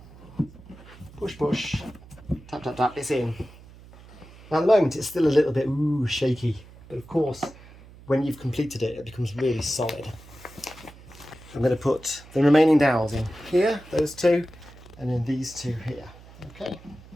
Push, push, tap, tap, tap, it's in. Now at the moment it's still a little bit shaky, but of course when you've completed it, it becomes really solid. I'm going to put the remaining dowels in here, those 2, and then these 2 here. Okay,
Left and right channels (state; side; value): noise; right; hum, 21 dB below the sound